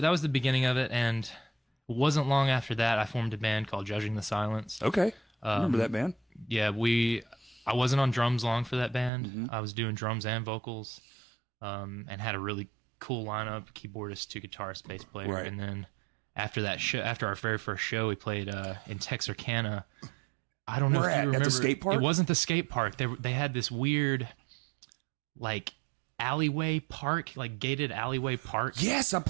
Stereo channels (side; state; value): left; drops out; at 9.1 s